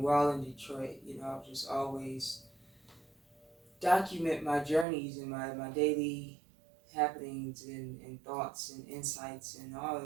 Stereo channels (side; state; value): left; drops out; at 4.9 s